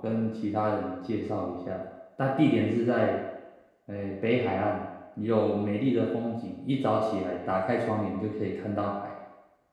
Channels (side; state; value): both; identical; correlation 1.00